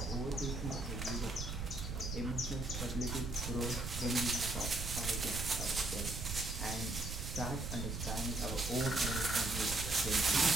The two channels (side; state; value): right; noise; rumble, 5 dB below the sound